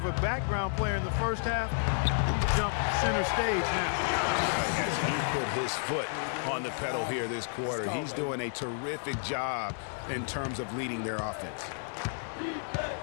a background player in the first half. He jumped center stage now. As he put his foot on the pedal here this quarter, he's doing a terrific job in terms of leading their offense.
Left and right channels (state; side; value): silent; right; digital silence